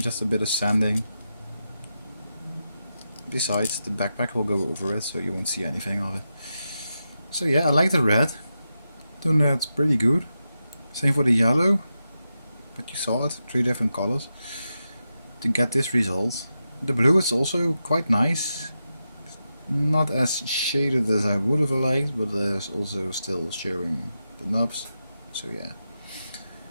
just a bit of sanding. Besides, the backpack will go over it, so you won't see anything of it. So yeah, I like the red. Then it's pretty good. Same for the yellow, but you saw it, 3 different colors to get this result. The blue is also quite nice. Not as shaded as I would have liked, but there's also still showing the knobs. So yeah,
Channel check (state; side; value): inverted; both; correlation -0.89